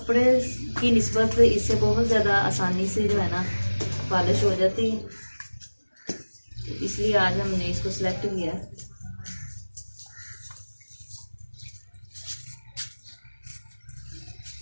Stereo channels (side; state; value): both; inverted; correlation -1.00